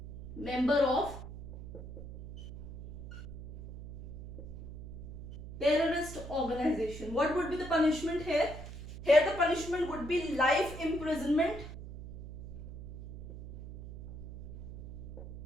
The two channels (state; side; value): noise; right; hum, 11 dB below the sound